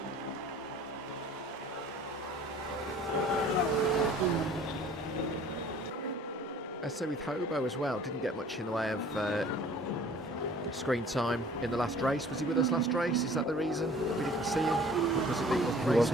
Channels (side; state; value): both; normal; correlation 0.50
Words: So with Hobo as well, didn't get much in the way of screen time in the last race. Was he with us last race? Is that the reason we didn't see him? Because he wasn't racing? Was